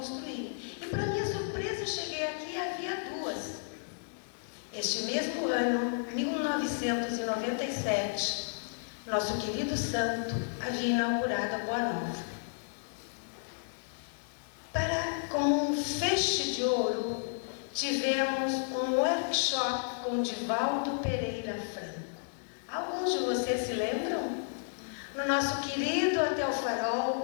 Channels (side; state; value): right; silent; digital silence